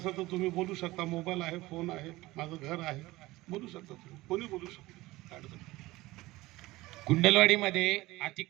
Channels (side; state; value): left; quieter; 19.2 dB